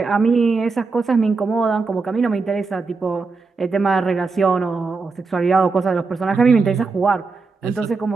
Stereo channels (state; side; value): quieter; left; 4.3 dB